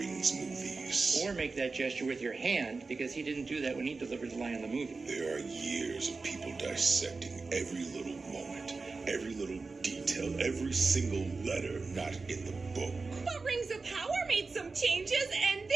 movies. Or make that gesture with your hand, because he didn't do that when he delivered the line in the movie. There are years of people dissecting every little moment, every little detail, every single letter not in the book. But Rings of Power made some changes, and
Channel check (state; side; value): quieter; left; 4.0 dB